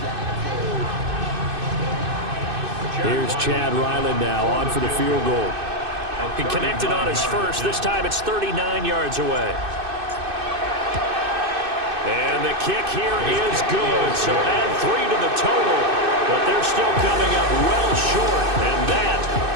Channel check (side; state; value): left; late; 2.6 ms